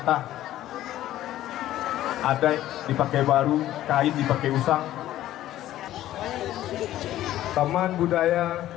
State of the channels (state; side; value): quieter; right; 13.6 dB